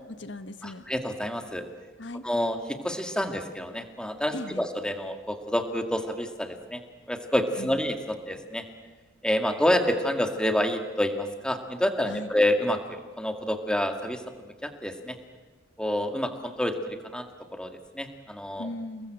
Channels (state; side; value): normal; both; correlation 0.83